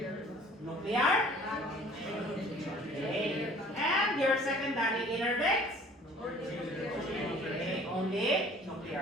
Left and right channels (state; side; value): normal; both; correlation 0.51